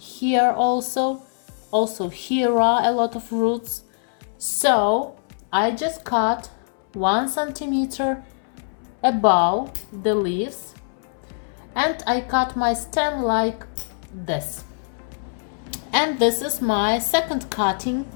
also here are a lot of roots. So I just cut 1 centimeter above the leaves and I cut my stem like this. And this is my second cutting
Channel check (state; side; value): silent; right; 63 dB below the other